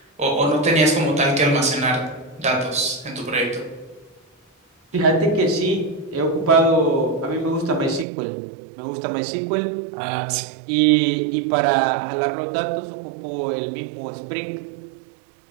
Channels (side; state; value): left; drops out; at 8.1 s